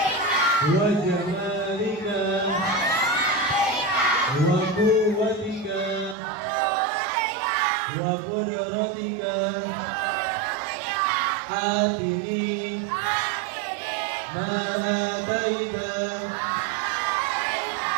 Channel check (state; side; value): drops out; left; at 6.2 s